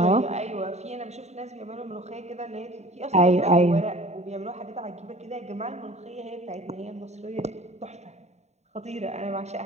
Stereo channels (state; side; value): late; left; 0.32 ms